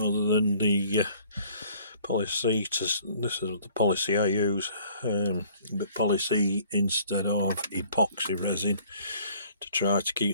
than the Poly-C, this is the Poly-C I use, but Poly-C instead of epoxy resin to try to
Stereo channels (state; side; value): inverted; both; correlation -0.56